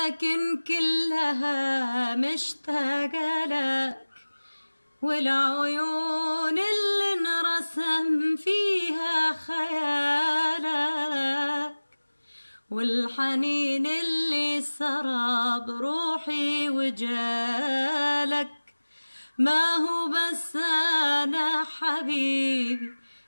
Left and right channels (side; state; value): both; inverted; correlation -1.00